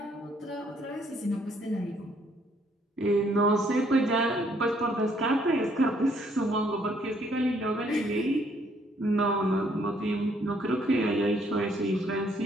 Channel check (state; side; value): normal; both; correlation 0.67